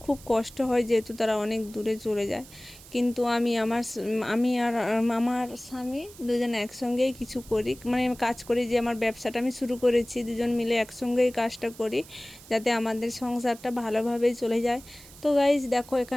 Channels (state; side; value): noise; right; hiss, 20 dB below the sound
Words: খুব কষ্ট হয়, যেহেতু তারা অনেক দূরে চলে যায়। কিন্তু আমি আর আমার স্বামী দুজন একসঙ্গেই কিছু করি, মানে কাজ করি, যে আমার ব্যবসাটা আমি শুরু করেছি, দুজন মিলে একসঙ্গেই কাজটা করি যাতে আমাদের সংসারটা ভালোভাবেই চলে যায়। তো গাইজ দেখো